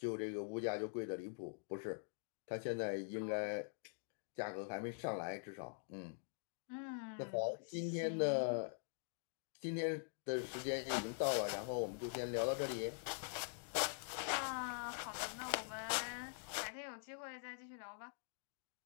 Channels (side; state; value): right; silent; digital silence